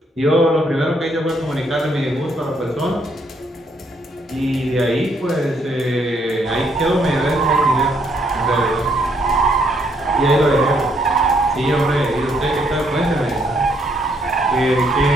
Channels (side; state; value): both; normal; correlation 0.71